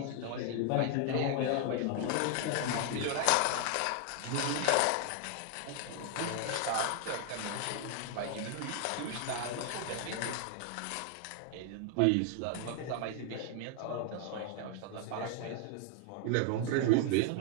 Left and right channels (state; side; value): different; both; correlation 0.00